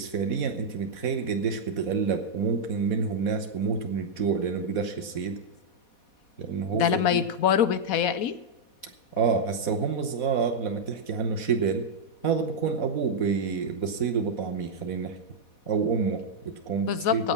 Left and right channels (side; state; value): right; late; 4.1 ms